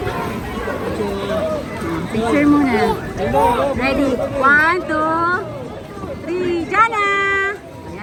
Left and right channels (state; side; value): identical; both; correlation 1.00